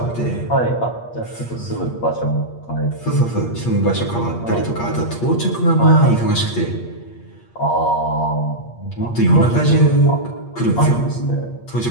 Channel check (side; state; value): right; late; 8.5 ms